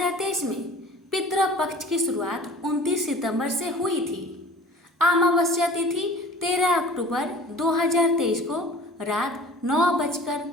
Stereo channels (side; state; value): both; normal; correlation 0.44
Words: में पितृ पक्ष की शुरुआत 29 सितंबर से हुई थी। अमावस्या तिथि 13 अक्टूबर 2023 को रात